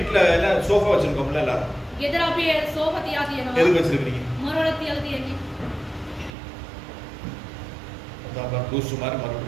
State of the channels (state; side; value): drops out; left; at 6.3 s